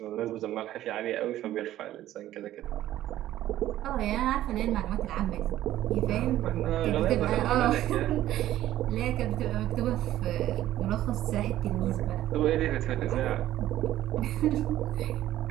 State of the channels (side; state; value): left; quieter; 13.5 dB